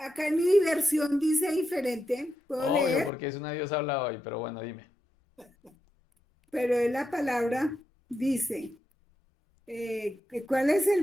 en mi versión dice diferente, puedo Obvio, leer, porque es una Dios habla hoy, pero bueno, dime. pero en la palabra dice, ¿cuál es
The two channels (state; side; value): normal; both; correlation 0.85